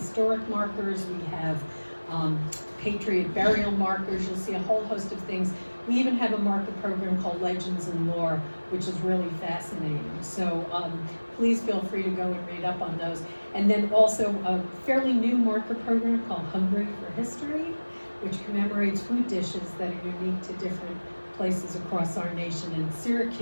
markers, we have Patriot burial markers, you'll see a whole host of things. We even have a marker program called Legends and Lore, which is really fascinating. So please feel free to go and read up on those. And then also a fairly new marker program called Hungry for History, which commemorates food dishes that are unique to different places across our nation. And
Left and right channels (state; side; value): inverted; both; correlation -1.00